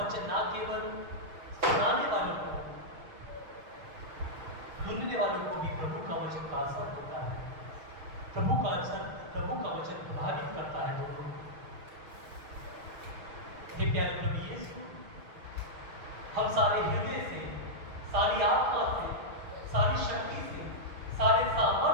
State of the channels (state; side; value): late; left; 6.7 ms